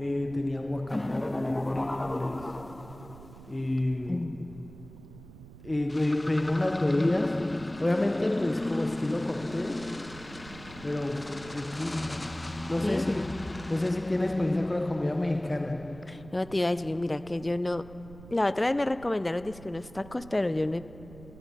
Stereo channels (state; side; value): noise; right; rumble, 17 dB below the sound